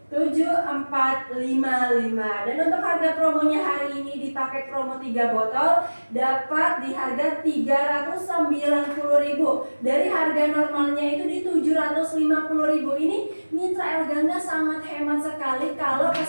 7455. Dan untuk harga promonya hari ini di paket promo 3 botol dapat di harga 390.000. Dari harga normalnya itu di 750.000. Ini mitra El Gangga sangat hemat sekali kalau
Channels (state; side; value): inverted; both; correlation -1.00